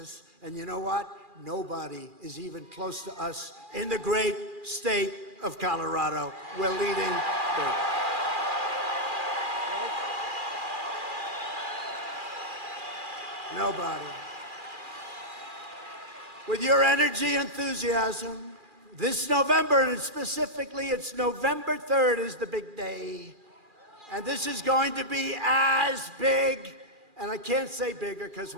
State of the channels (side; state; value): left; late; 2.4 ms